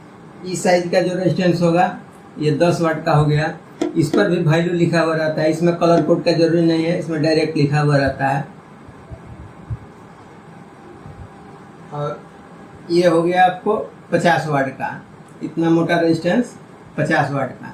इस साइज का जो रेजिस्टेंस होगा ये 10 वाट का हो गया। इस पर भी वैल्यू लिखा हुआ रहता है, इसमें कलर कोड का जरूरी नहीं है, इसमें डायरेक्ट लिखा हुआ रहता है। और ये हो गया आपको 50 वाट का, इतना मोटा रेजिस्टेंस 50 वाट का।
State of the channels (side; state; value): both; identical; correlation 1.00